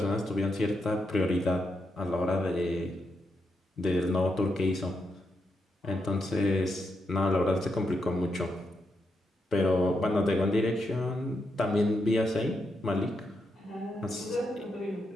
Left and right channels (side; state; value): both; normal; correlation 0.83